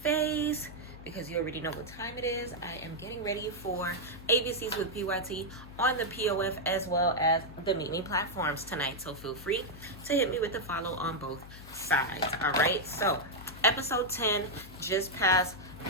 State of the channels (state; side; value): noise; left; hum, 16 dB below the sound